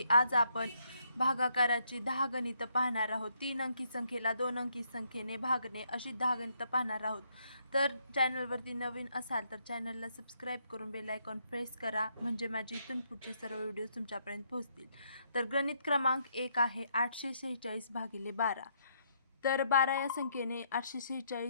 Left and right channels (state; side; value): inverted; both; correlation -0.73